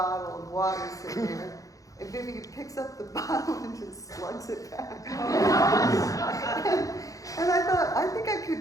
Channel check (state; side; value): late; right; 0.17 ms